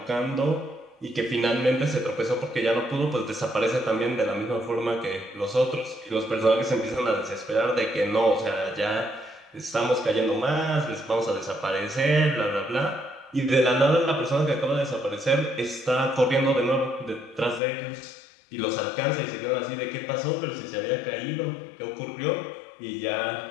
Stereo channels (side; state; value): right; drops out; at 17.6 s